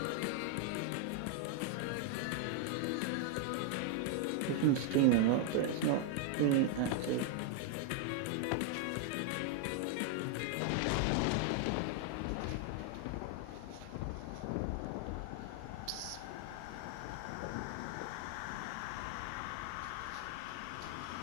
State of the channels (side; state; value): both; different; correlation 0.00